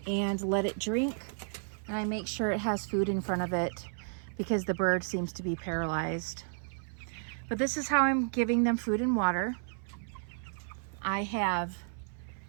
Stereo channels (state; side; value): silent; left; 56 dB below the other